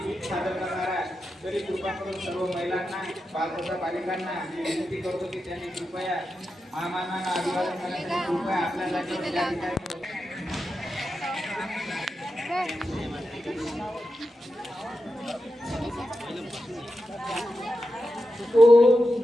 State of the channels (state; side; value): normal; both; correlation 0.89